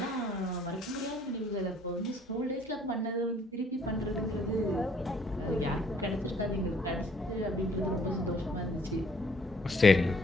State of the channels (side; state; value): both; normal; correlation 0.62